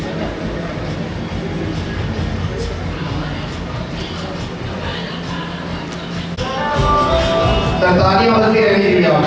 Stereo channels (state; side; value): identical; both; correlation 1.00